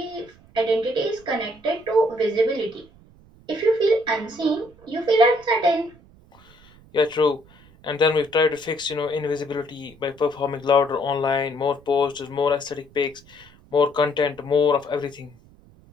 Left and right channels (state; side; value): noise; right; rumble, 26 dB below the sound